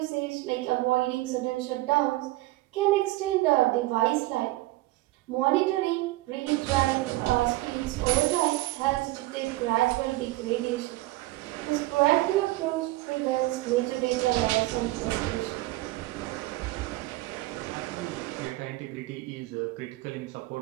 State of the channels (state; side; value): quieter; left; 18.7 dB